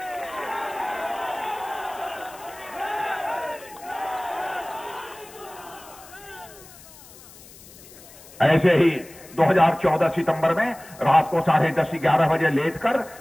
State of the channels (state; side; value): noise; left; hiss, 20 dB below the sound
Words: ऐसे ही 2014 सितंबर में रात को 10:30-11 बजे लेटकर